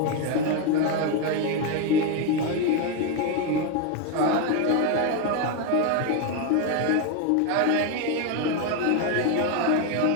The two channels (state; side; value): different; both; correlation 0.02